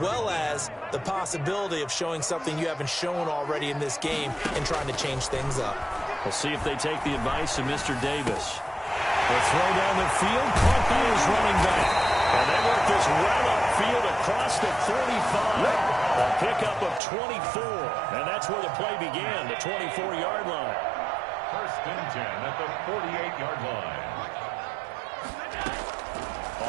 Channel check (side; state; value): left; drops out; at 17.0 s